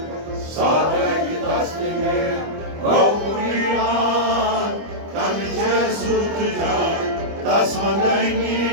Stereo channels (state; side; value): late; left; 25 ms